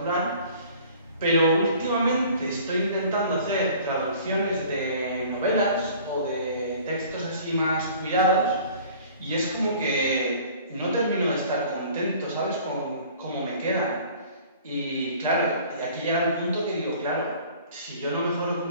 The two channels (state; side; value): inverted; both; correlation -0.49